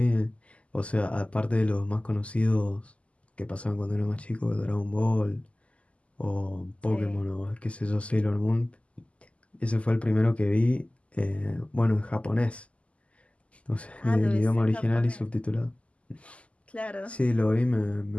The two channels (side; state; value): right; late; 0.061 ms